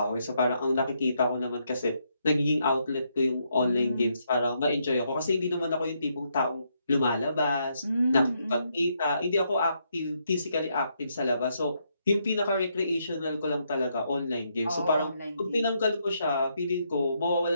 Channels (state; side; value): inverted; both; correlation -0.77